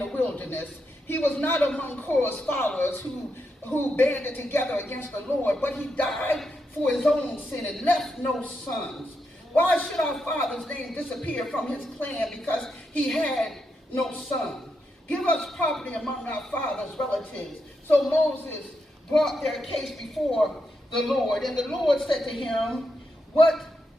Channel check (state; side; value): normal; both; correlation 0.84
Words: wilderness. He was not among Korah's followers who banded together against the Lord, but he died for his own sin and left no sons. Why should our father's name disappear from his clan because he had no son? Give us property among our father's relatives. So Moses brought their case before the Lord, and the Lord said to him, What